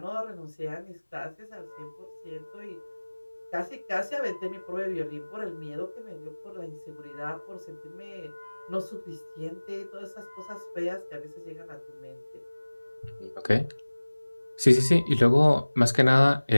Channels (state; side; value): inverted; both; correlation -1.00